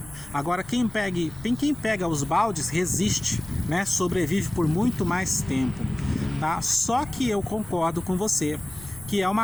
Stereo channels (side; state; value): left; noise; rumble, 18 dB below the sound